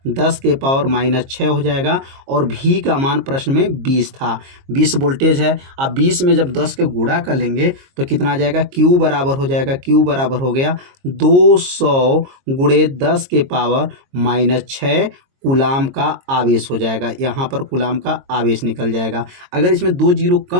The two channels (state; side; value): late; left; 22 ms